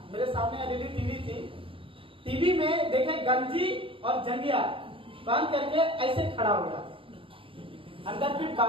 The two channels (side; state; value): left; late; 0.25 ms